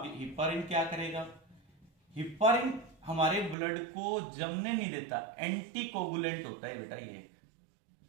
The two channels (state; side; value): drops out; left; at 3.6 s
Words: हिपारिन क्या करेगा? हिपारिन हमारे ब्लड को जमने नहीं देता, एंटीकोगुलेंट होता है बेटा ये एक